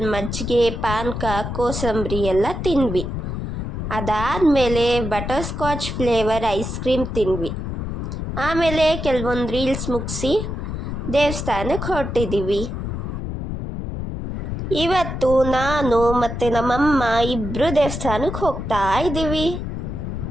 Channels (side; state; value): left; noise; rumble, 5 dB below the sound